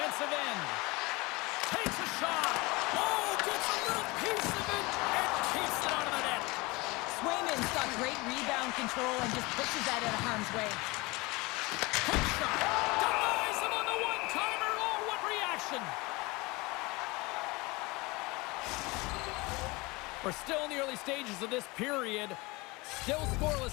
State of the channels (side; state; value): right; quieter; 24.1 dB